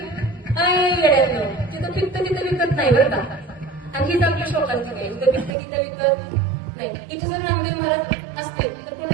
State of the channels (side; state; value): left; drops out; at 5.5 s